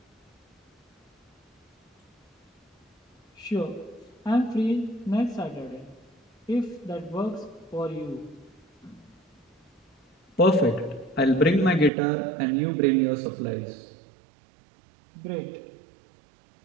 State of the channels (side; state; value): left; drops out; at 11.9 s